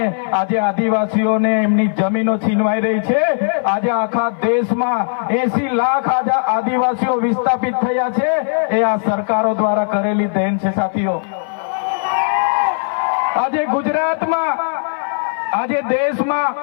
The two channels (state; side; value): silent; right; 59 dB below the other